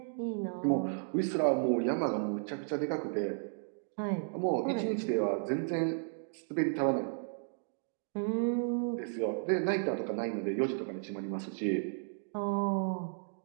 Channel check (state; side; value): silent; left; digital silence